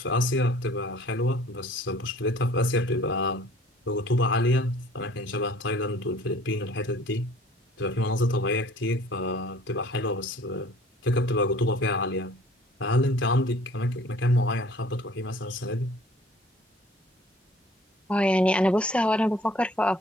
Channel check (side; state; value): both; normal; correlation 0.52